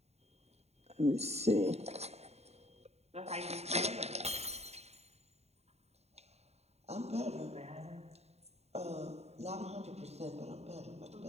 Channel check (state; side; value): late; left; 0.31 ms